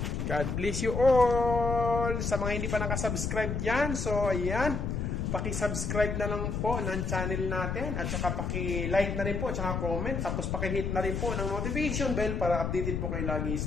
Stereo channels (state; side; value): noise; left; rumble, 1 dB below the sound